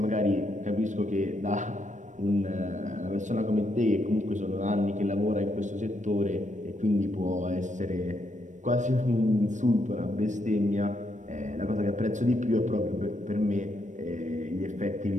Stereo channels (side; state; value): left; late; 0.35 ms